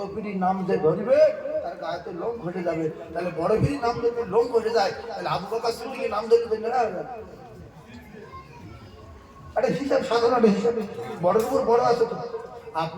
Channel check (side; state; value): both; identical; correlation 1.00